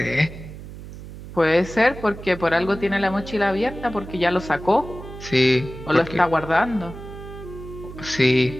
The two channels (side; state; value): right; noise; hum, 13 dB below the sound